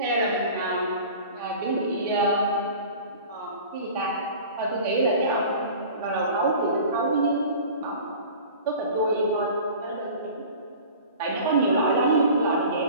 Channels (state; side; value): inverted; both; correlation -0.41